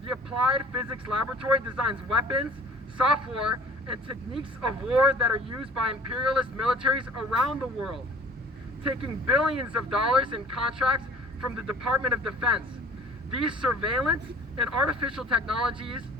the Applied Physics Laboratory designs weapons, software, and techniques of war that are used by imperialist militaries around the world, taking billions of dollars in contracts from the Department of Defense. These surveillance and artificial technologies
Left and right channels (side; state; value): both; normal; correlation 0.48